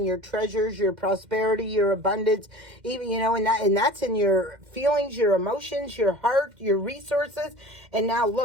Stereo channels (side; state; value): left; late; 2.1 ms